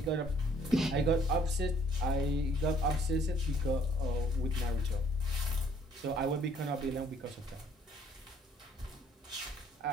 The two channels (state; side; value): normal; both; correlation 0.61